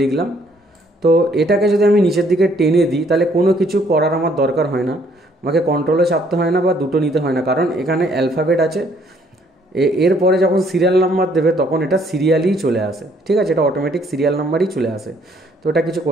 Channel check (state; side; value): normal; both; correlation 0.65